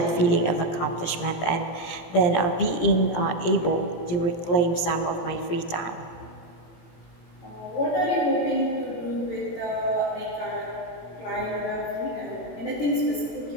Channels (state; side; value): late; right; 18 ms